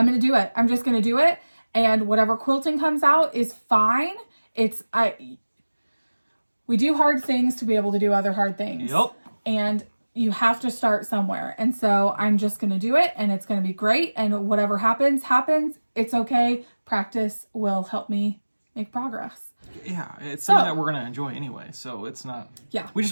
going to do it. I'm just going to do it. And whatever quilting comes out is fine. We do hard things to be able to do other hard things. Yep. And you have to start somewhere. And so I'm just going to do it, and it's going to be great. And whatever happens. It's okay. Practice will help me make progress. Yeah, it's something that we're going to enjoy anyway. So it's not, we just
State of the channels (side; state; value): both; inverted; correlation -1.00